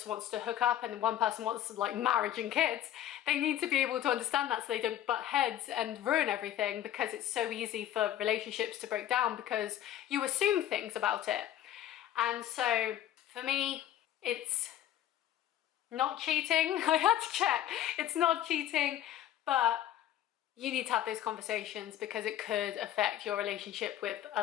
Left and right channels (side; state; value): right; quieter; 12.0 dB